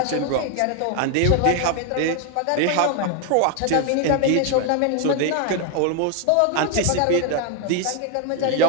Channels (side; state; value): both; different; correlation 0.01